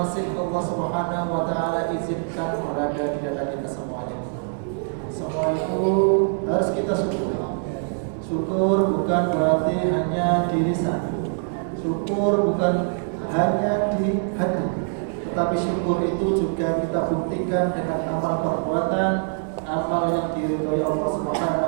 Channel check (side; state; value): left; silent; 63 dB below the other